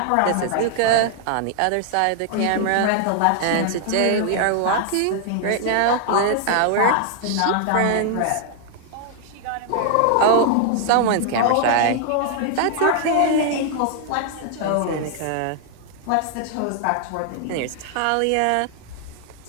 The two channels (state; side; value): different; both; correlation 0.00